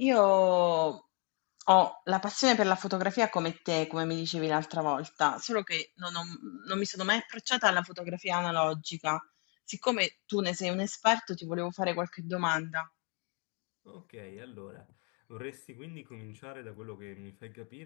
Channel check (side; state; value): right; quieter; 35.9 dB